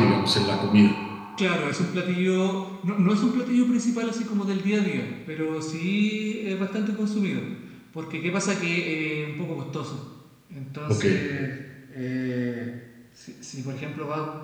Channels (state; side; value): identical; both; correlation 1.00